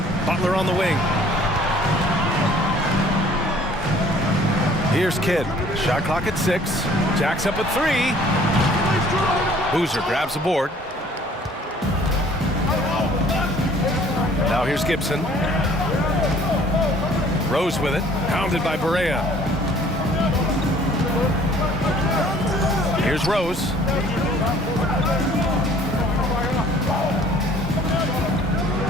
Butler on the wing. Here's Kidd. Shot clock at 6. Jacks up at 3. Boozer grabs the board. Now here's Gibson. Rose with it. Pounded by Barea. Here's Rose.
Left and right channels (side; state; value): both; normal; correlation 0.55